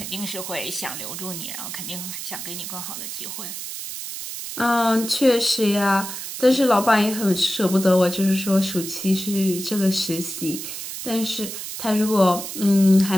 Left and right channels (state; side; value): noise; right; hiss, 8 dB below the sound